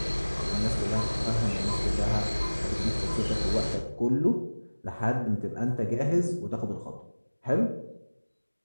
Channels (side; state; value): both; inverted; correlation -1.00